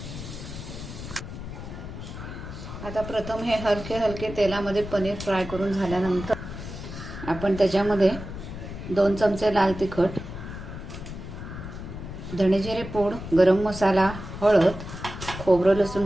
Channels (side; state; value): left; noise; rumble, 10 dB below the sound